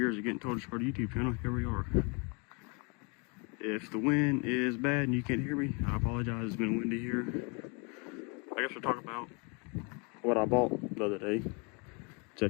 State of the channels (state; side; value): quieter; right; 33.1 dB